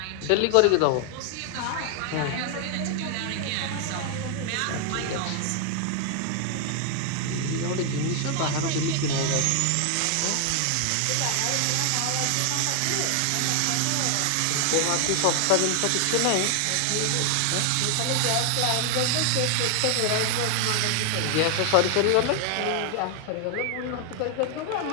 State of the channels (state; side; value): different; both; correlation 0.00